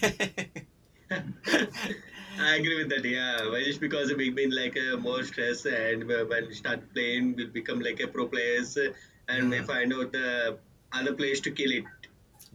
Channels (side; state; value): both; identical; correlation 1.00